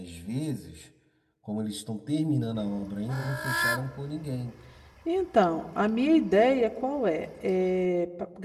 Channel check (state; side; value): identical; both; correlation 1.00